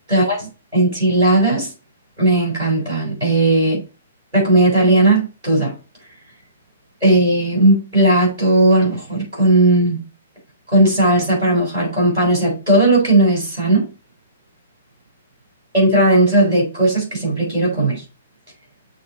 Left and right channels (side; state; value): both; inverted; correlation -0.47